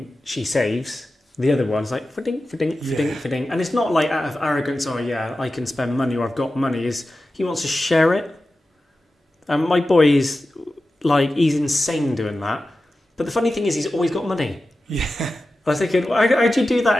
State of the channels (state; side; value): normal; both; correlation 0.93